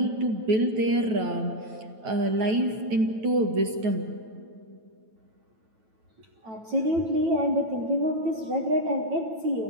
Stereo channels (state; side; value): late; left; 9.1 ms